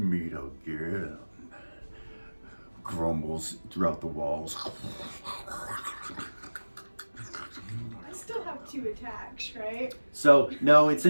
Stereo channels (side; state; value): both; inverted; correlation -1.00